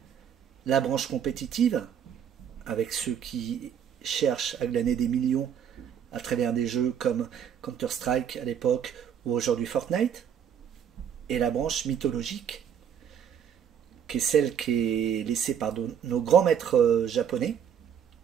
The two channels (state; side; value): quieter; left; 8.5 dB